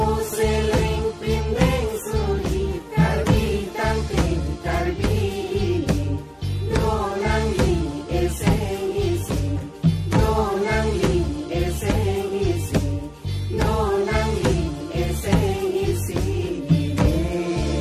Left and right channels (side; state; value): both; identical; correlation 1.00